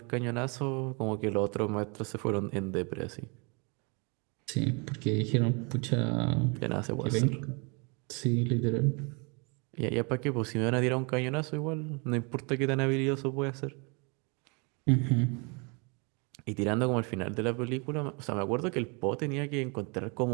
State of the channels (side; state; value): left; quieter; 32.3 dB